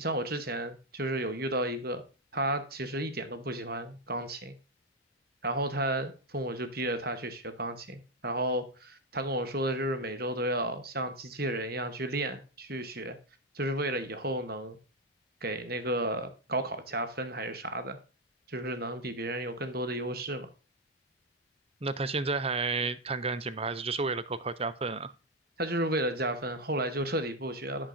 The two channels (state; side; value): normal; both; correlation 0.05